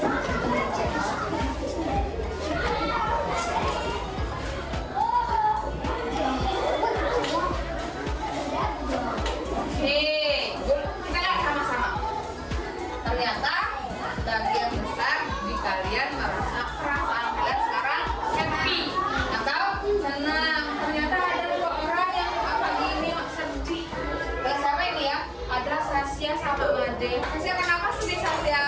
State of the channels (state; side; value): identical; both; correlation 1.00